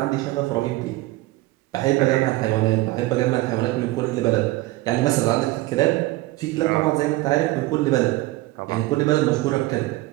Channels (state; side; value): quieter; left; 19.0 dB